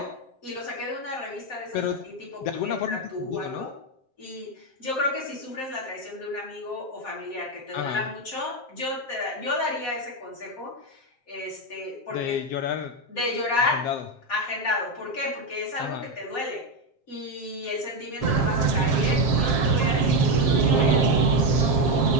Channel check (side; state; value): right; late; 7.6 ms